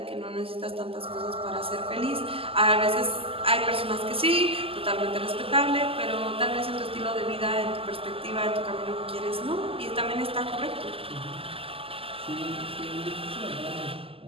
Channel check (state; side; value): late; left; 0.27 ms